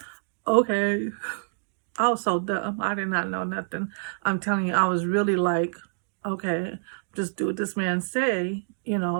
okay. I was so dumb. I did not know nothing. I'm telling you, I was really like, okay, just do what this man say.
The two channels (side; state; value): left; silent; digital silence